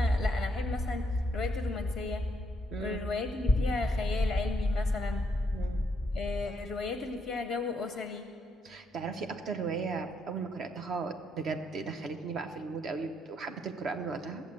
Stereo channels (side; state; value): both; normal; correlation 0.75